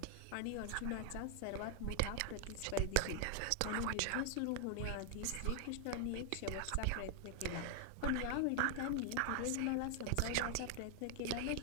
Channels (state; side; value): different; both; correlation 0.00